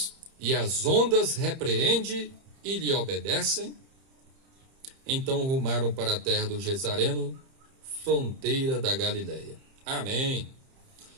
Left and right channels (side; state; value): left; late; 30 ms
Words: e às ondas repreende e lhe obedecem? Então rumaram para a terra do Gesareno, fronteira da Galileia. Amém.